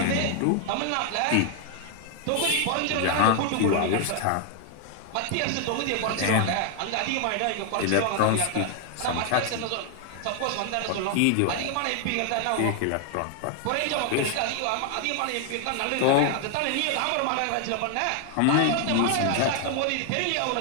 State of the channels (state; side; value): different; both; correlation 0.00